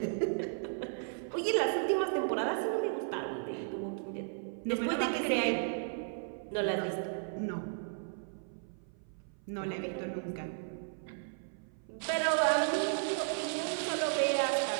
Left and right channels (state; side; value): silent; left; 55 dB below the other